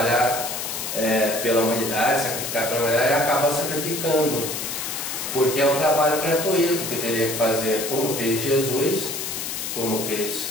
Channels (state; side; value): noise; left; hiss, 4 dB below the sound